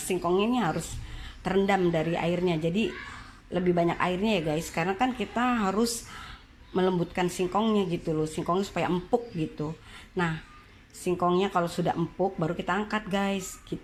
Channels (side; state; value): both; identical; correlation 1.00